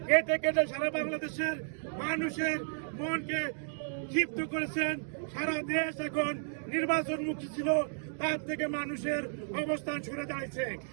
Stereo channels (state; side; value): silent; left; digital silence